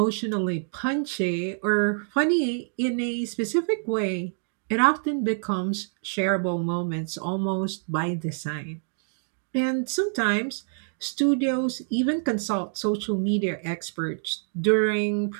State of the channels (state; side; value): silent; left; digital silence